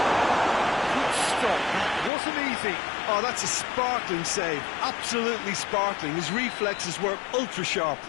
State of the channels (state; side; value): drops out; right; at 2.1 s